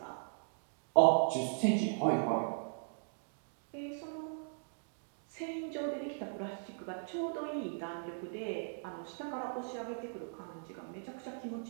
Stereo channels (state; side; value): silent; left; digital silence